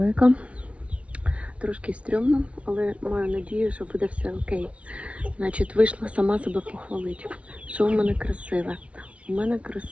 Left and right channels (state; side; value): late; left; 0.063 ms